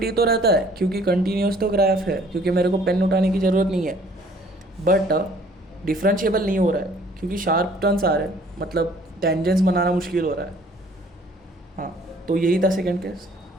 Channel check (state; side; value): normal; both; correlation 0.57